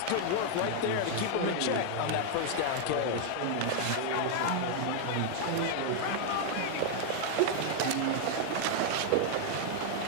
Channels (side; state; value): both; different; correlation 0.00